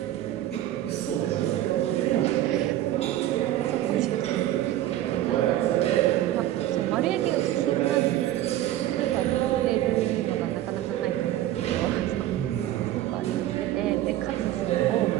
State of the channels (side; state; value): left; quieter; 13.6 dB